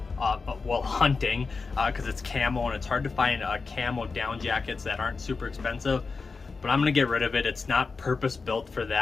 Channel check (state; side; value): quieter; right; 4.4 dB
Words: well, hunting, because it's camo, and it's hard to find camo down jackets that aren't super expensive. but I'm gonna get rid of it. It's not purpose built for